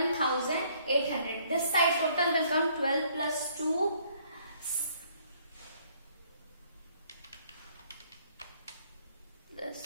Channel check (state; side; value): inverted; both; correlation -0.64